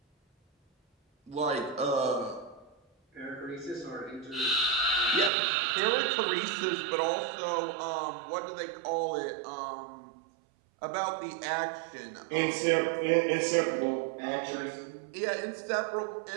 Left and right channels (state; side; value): drops out; left; at 5.3 s